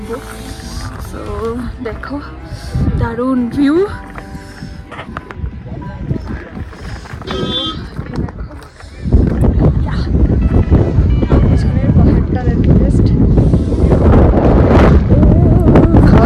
সো দেখো, দারুণ ভিউ। পাহাড়টা দেখো, জাস্ট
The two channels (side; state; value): both; identical; correlation 1.00